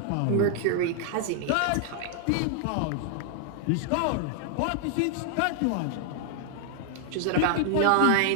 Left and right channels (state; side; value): different; both; correlation 0.00